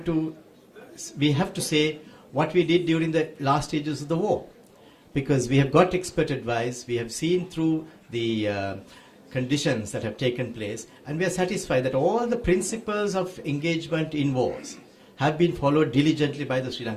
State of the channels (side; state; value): both; identical; correlation 1.00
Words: we have to say what we did during the last stages of the war, because we have got expert advice. We have seen through the conditions that have taken place, and we are satisfied that all the principles of engagement in wars have been followed diligently by the Sri